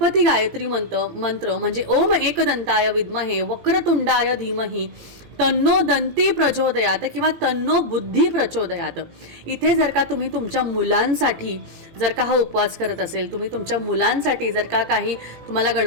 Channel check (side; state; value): left; late; 18 ms